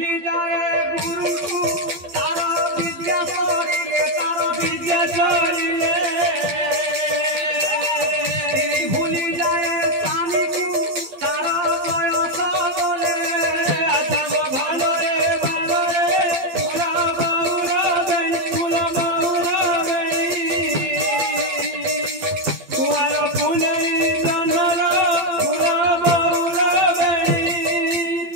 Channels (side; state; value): left; late; 12 ms